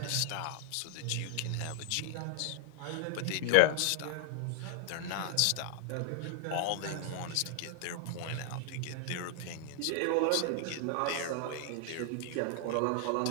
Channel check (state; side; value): different; both; correlation 0.00